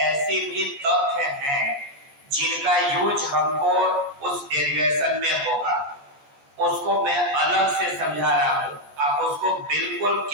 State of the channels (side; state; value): left; late; 14 ms